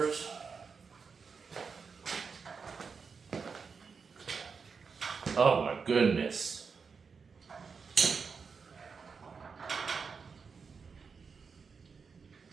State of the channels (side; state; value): left; quieter; 5.4 dB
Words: Oh my goodness.